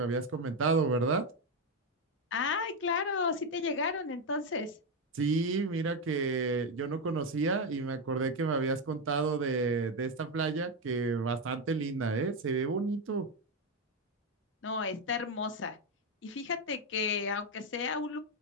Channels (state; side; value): normal; both; correlation 0.08